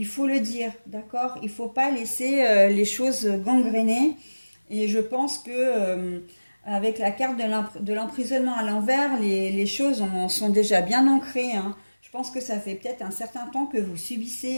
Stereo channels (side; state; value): both; inverted; correlation -1.00